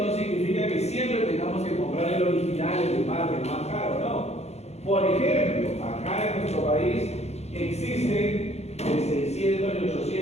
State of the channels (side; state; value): right; late; 0.31 ms